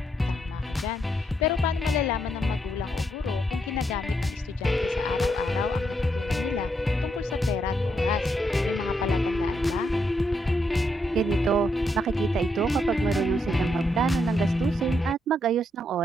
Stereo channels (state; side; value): normal; both; correlation 0.78